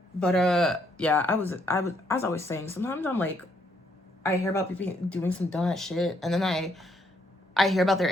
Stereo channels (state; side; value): normal; both; correlation 0.71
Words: But, yeah, as I was saying, sometimes I'm like, I hear about people doing some dumb shit. And then I hear about their